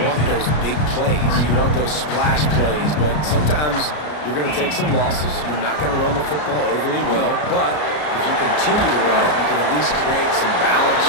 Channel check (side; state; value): right; late; 33 ms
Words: want those big plays. You want those splash plays, but sometimes you're going to take some losses. You're not going to run the football overly well, but if you continue to run it, you can at least create some balance.